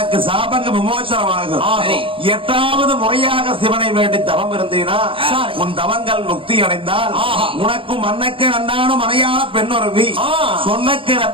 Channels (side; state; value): left; late; 0.26 ms